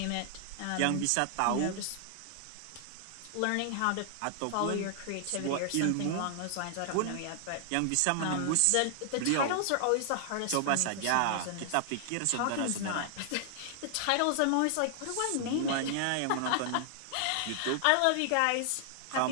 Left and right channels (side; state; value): both; different; correlation 0.00